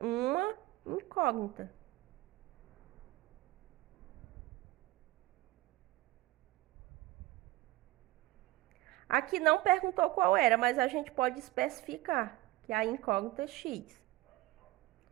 incógnita. Aqui não perguntou qual era, mas a gente pode especificar, que é a incógnita x.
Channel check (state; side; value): quieter; left; 18.4 dB